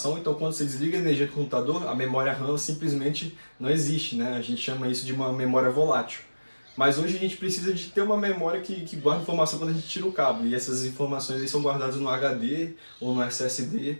Então quando você desliga a energia do computador, a memória RAM simplesmente não existe, né? A gente chama isso de uma memória volátil. Mas hoje a gente precisa de ter uma memória que guarda informação quando a gente tira o cabo, e essas informações aí são guardadas no HD ou no SSD,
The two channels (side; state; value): both; inverted; correlation -1.00